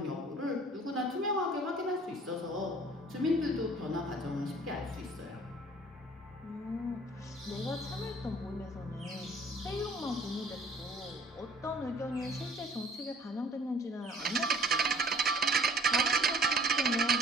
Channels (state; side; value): normal; both; correlation 0.53